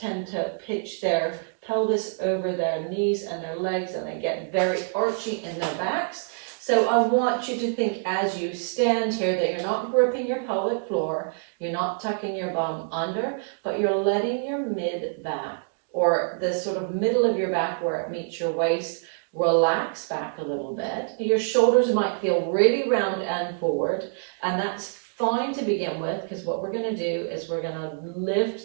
tend to pitch their pelvis over their knees and their legs, and they get very archy in their backs. So I want you to think as you stand here that you're not gripping your pelvic floor, you're not tucking your bum under, but you're letting your mid back, or the sort of middle of your back where it meets your waist, relax back a little bit. Your shoulders might feel really round and forward, and that's fine to begin with, because what we're going to do is we're going to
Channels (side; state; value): left; silent; digital silence